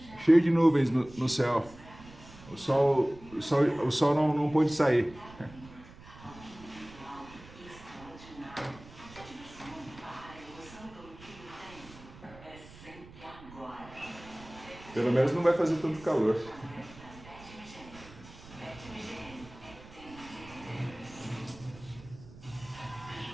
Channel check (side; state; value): right; noise; rumble, 19 dB below the sound